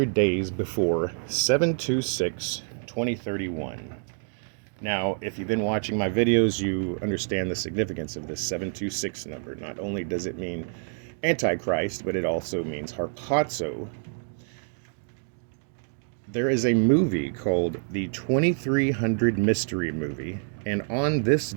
days before 7/26/2031. Now, if you've been watching my videos, you understand the significance of this 726 number. Not only does it mean Antichrist, but it also means harpazo. There is a movie called the 2300 Mystery Movie, and on this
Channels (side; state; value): left; silent; 60 dB below the other